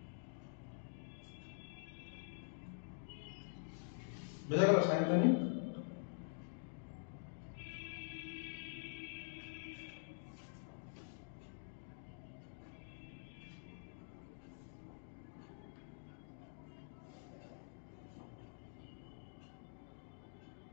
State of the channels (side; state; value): right; silent; digital silence